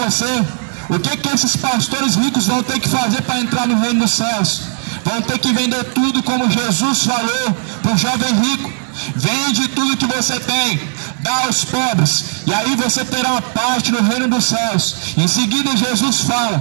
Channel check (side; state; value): left; silent; digital silence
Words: o que esses pastores ricos vão ter que fazer para entrar no reino dos céus? Vão ter que vender tudo, como Jesus falou para o jovem rico. Vende tudo que você tem, dá aos pobres, e aí você terá uma parte no reino dos céus. Em seguida Jesus